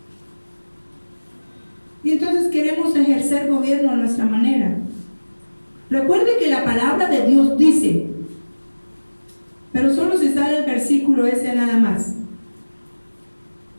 Y entonces queremos ejercer gobierno a nuestra manera. Recuerde que la palabra de Dios dice, pero solo se sale el versículo ese nada más.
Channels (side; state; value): both; inverted; correlation -1.00